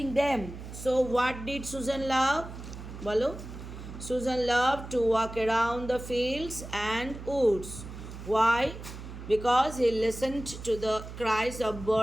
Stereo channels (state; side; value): noise; right; hum, 11 dB below the sound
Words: them. So what did Susan love? বলো। Susan loved to walk around the fields and woods. Why? Because he listened to the cries of